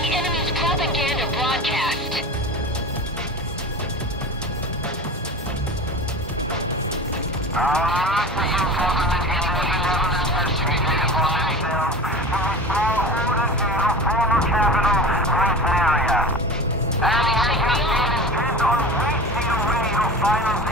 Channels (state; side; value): normal; both; correlation 0.33